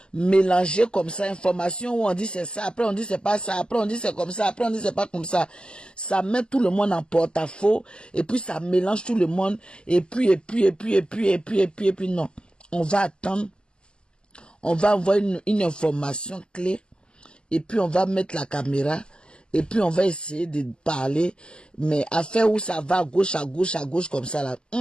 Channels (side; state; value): right; late; 0.048 ms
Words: mélangée comme ça, information où on dit c'est ça, après on dit c'est pas ça, après on dit c'est comme ça, après on dit c'est pas comme ça. Ça met tout le monde en porte-à-faux et puis ça mélange tout le monde et puis non. On va attendre, on va avoir une information clé et puis on va mettre la caméra. Et puis on va essayer de parler, mais à faire où ça va à gauche, comme ça là.